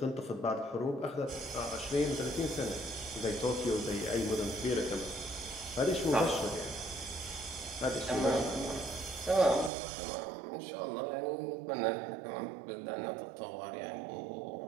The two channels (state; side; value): drops out; left; at 9.7 s